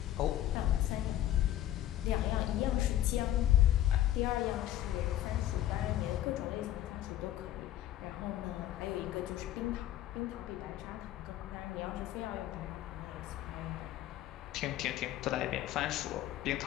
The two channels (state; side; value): quieter; right; 12.9 dB